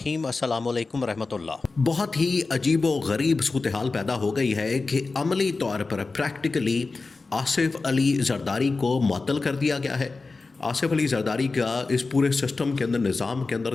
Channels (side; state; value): right; quieter; 3.9 dB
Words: अस्सलामुअलैकुम रहमतुल्लाह। बहुत ही अजीब व गरीब सूरत हाल पैदा हो गई है कि अमली तौर पर प्रैक्टिकली आसिफ अली जरदारी को मुअत्तल कर दिया गया है। आसिफ अली जरदारी का इस पूरे सिस्टम के अंदर, निज़ाम के अंदर